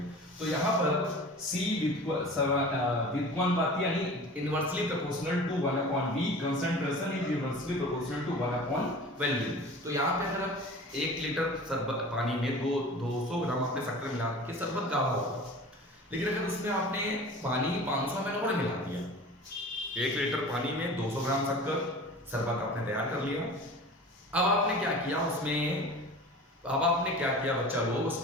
तो यहाँ पर C व्युत्क्रमानुपाती यानी inversely proportional to 1/V, concentration is inversely proportional to 1/वैल्यू। तो यहाँ पे अगर 1 लीटर शरबत पानी में 200 ग्राम आपने शक्कर मिला रखी है, शरबत गाढ़ा होगा। लेकिन अगर उसमें आपने पानी 500 ml और मिला दिया, 1 लीटर पानी में 200 ग्राम शक्कर शरबत आपने तैयार कर लिया। अब आपने क्या किया उसमें, अब आपने क्या किया बच्चा लोग,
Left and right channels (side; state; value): both; normal; correlation 0.39